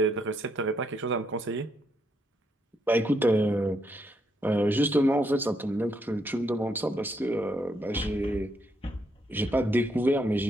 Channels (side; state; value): both; normal; correlation 0.76